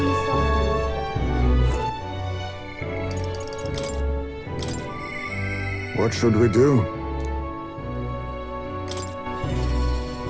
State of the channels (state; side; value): identical; both; correlation 1.00